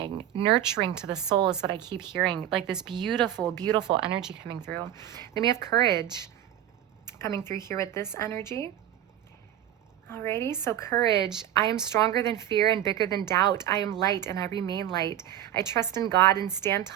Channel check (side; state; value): left; quieter; 11.6 dB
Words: nurturing to the soul is what I keep hearing. Like this beautiful, beautiful energy coming through. Then we have courage coming through here with this energy. Alrighty, so courage. I am stronger than fear and bigger than doubt. I am light and I remain light. I trust in God and stand